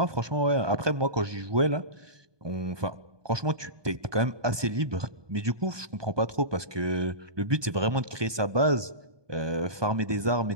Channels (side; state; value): left; late; 1.2 ms